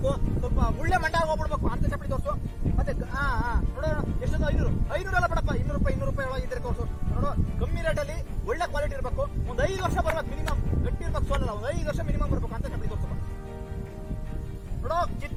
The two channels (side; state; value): both; identical; correlation 1.00